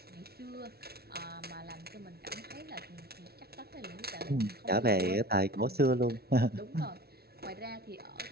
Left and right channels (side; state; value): left; late; 0.45 ms